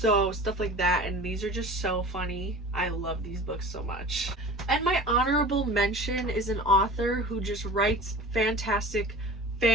stuff like that, and these are just so funny. I love these books so much. And my honorable mention is an author who just writes fantastic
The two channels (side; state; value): both; normal; correlation 0.39